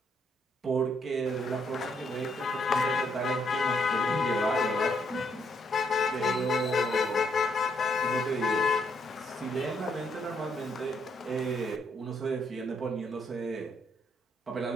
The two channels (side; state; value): both; normal; correlation 0.73